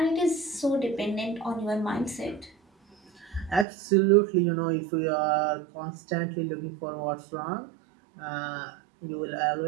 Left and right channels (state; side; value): drops out; left; at 3.7 s